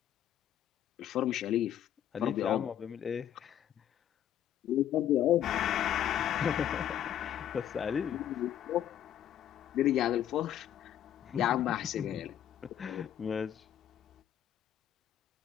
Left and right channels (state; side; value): quieter; right; 10.6 dB